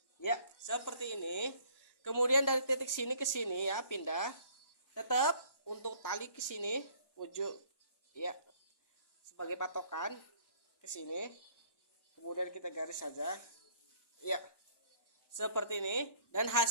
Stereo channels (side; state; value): right; late; 1.1 ms